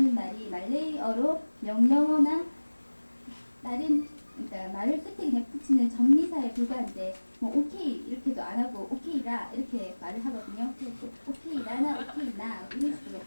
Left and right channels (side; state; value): both; inverted; correlation -1.00